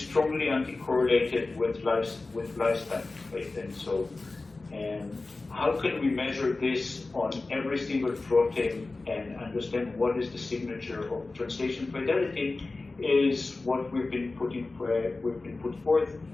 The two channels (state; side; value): quieter; right; 3.4 dB